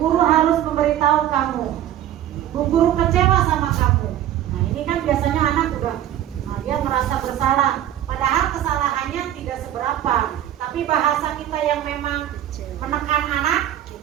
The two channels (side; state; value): left; quieter; 11.8 dB